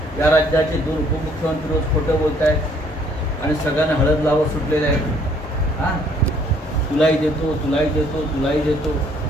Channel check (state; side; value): normal; both; correlation 0.63